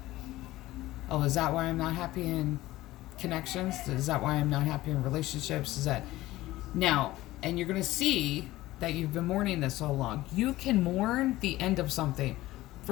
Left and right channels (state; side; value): quieter; right; 17.0 dB